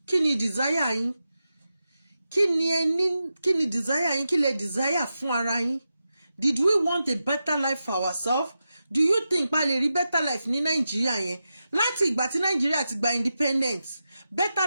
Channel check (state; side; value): inverted; both; correlation -0.90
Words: kí ni desire yín kí ni desire yín kí lè desire fún ara yín did we want a better life for ourselves do you think pa lè rí better life ní Nàìjíríà yẹn láti ìgbà tí Nàìjíríà ti gba independence better